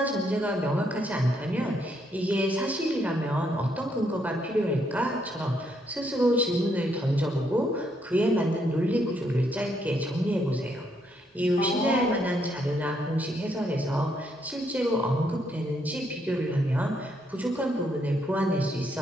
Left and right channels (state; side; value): normal; both; correlation 0.74